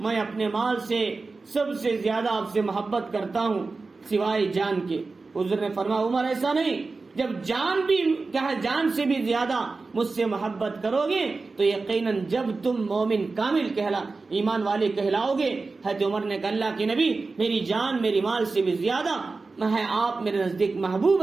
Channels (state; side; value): quieter; left; 3.9 dB